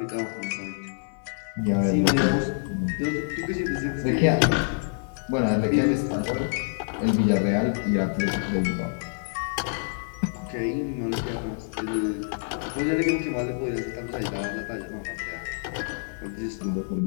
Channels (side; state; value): right; silent; digital silence